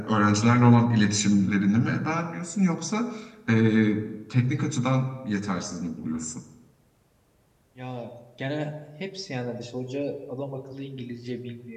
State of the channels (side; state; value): both; identical; correlation 1.00